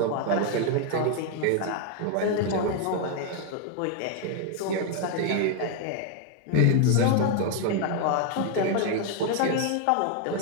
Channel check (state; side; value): different; both; correlation 0.00